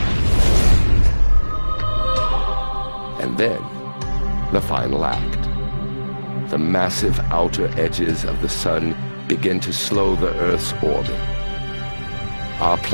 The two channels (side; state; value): both; inverted; correlation -1.00